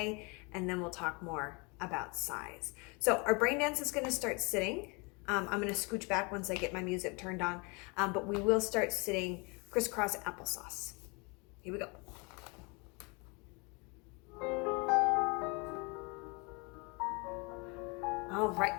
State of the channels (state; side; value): quieter; right; 30.3 dB